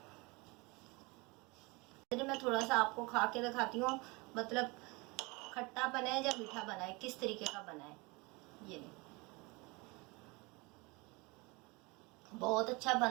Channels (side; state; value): left; quieter; 26.1 dB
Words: मैं थोड़ा सा आपको खा के दिखाती हूँ, मतलब खट्टा बना है या मीठा बना है, किस तरीके का बना है। ये नहीं, बहुत अच्छा